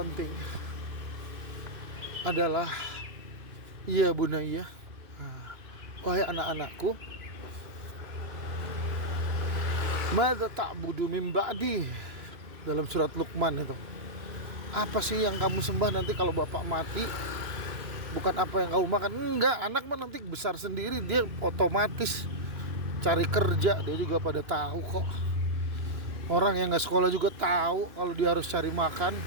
adalah ya bunayya, wahai anak-anakku, madza ta'budu min ba'di, dalam surat Luqman itu. Apa sih yang kamu sembah nanti kalau bapak mati? Bukan apa yang kamu makan. Enggak, anak mah nanti besar sendiri, dia otomatis cari kerja, dia juga pada tahu kok. Orang yang gak sekolah juga tahu kalau dia harus cari makan.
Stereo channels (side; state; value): left; late; 2.9 ms